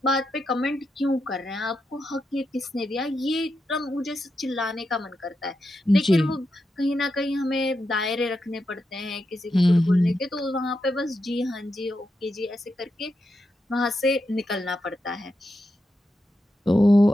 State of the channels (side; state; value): both; normal; correlation 0.86